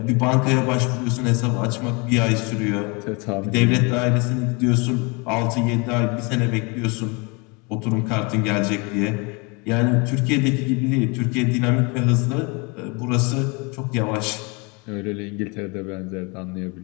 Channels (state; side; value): quieter; right; 29.8 dB